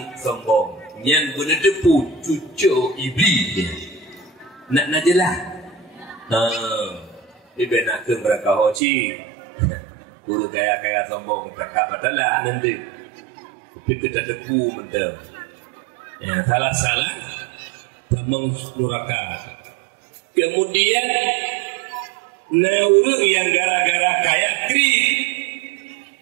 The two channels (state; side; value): drops out; left; at 8.8 s